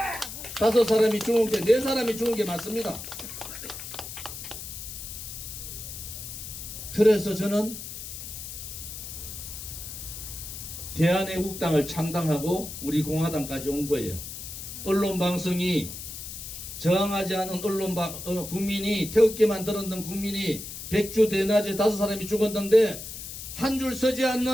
5사람이 죽은 게 4사람이 죽은 게 맞습니다. 그래서 저는 대한애국당을 창당하고 우리 공화당까지 온 거예요. 언론방송이 저항하지 않은 국민이 태극기만 들었던 국민이 백주 대낮에 5사람이 죽었는데 한 줄 서지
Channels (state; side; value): noise; left; hiss, 9 dB below the sound